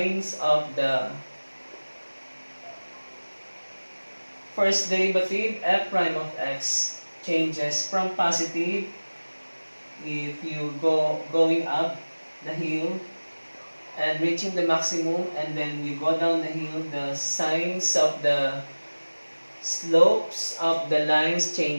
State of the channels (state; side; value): inverted; both; correlation -1.00